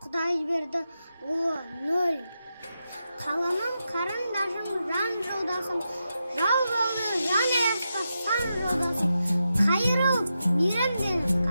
Құдай берді ұлы нөл. Қаламым қарындашым, жан жолдасым, жау болды жан аясқа сан жолдасым. Қайырылып мейрамденіп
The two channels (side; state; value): both; inverted; correlation -0.88